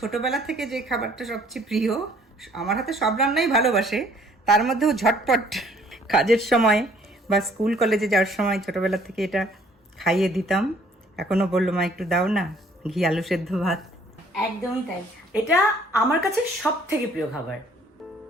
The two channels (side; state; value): both; normal; correlation 0.59